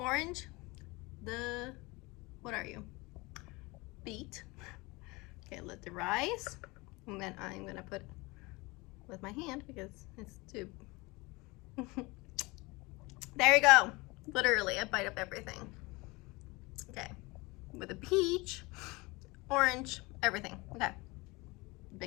the, what are you? Beet. Okay, let the rice, and then I'm gonna put with my hand because it's too. There you go. Literally a bite of everything. Okay, with the peach, orange, everything. Okay,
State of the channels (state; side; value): quieter; right; 24.3 dB